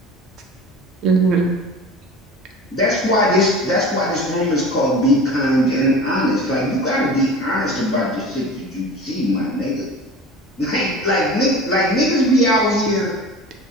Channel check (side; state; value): both; normal; correlation 0.38